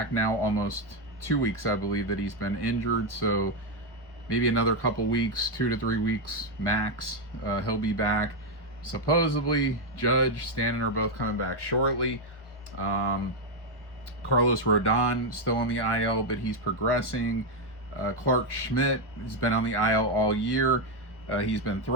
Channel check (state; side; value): late; right; 1.3 ms